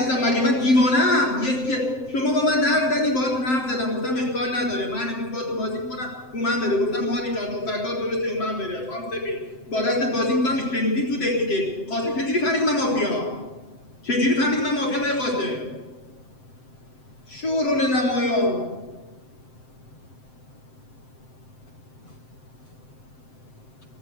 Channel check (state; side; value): late; right; 7.7 ms